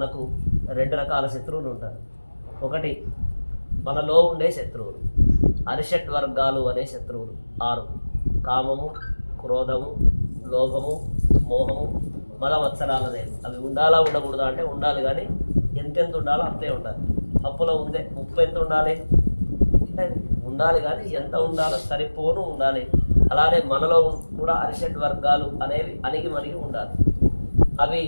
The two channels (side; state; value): both; inverted; correlation -1.00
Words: 2 రకాల శత్రువులు ఉంటారు. ఒకటి మనలో ఉండే శత్రువులు, అరిషట్ వర్గాలు అనే శత్రువులు 6: కామము, క్రోధము, లోభము, మోహము, మలమత్సరాలనే. అవి ఉండాలా ఉండకూడదా అంటే ఉండాలి, కానీ ఎంతెంత ఉండాలో అంతే ఉండాలి. పప్పులో ఉందే ఉప్పు ఎంత ఉండాలి అంటే ఉండాలి, కానీ ఎంత ఉండాలో సరిపోను ఉండాలి. అలానే మనలో కూడా అరిషట్ వర్గాలు అనేవి అణిగి మణిగి ఉండాలి. అవి